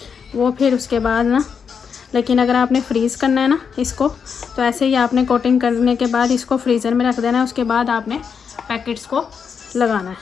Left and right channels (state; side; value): quieter; right; 6.5 dB